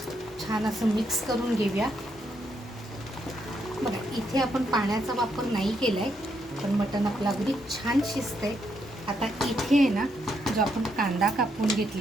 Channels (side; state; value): both; normal; correlation 0.77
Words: छान असं मिक्स करून घेऊया. बघा इथे आपण पाण्याचा वापर नाही केलाय, पण मटण आपलं अगदी छान शिजतंय. आता इथे आहे ना जो आपण कांदा कापून